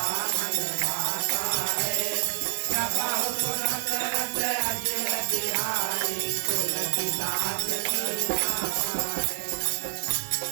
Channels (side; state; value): left; silent; digital silence